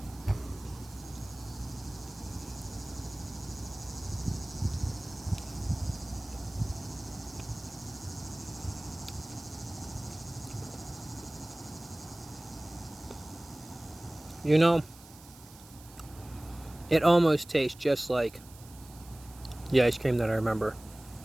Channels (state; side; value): noise; right; hiss, 20 dB below the sound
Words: You know, it almost tastes just like the ice cream that I remember.